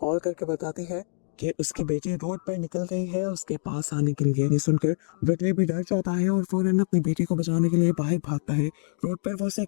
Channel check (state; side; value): silent; right; digital silence